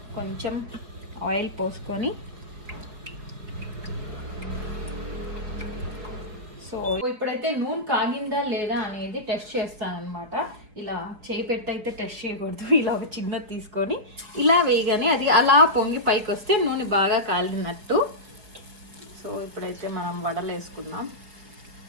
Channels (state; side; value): late; left; 4.9 ms